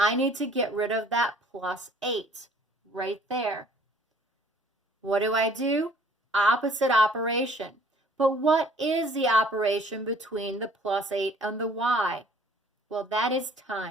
need to get rid of that plus 8 right there. What do? Opposite operation. But what is the operation between the plus 8 and the y? Well, that is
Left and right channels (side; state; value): both; normal; correlation 0.55